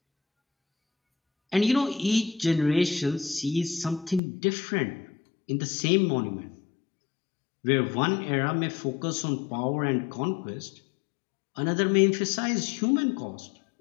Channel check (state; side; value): drops out; right; at 4.2 s